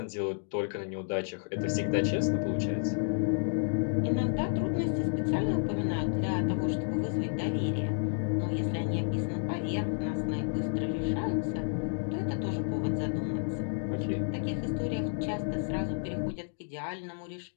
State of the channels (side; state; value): right; silent; digital silence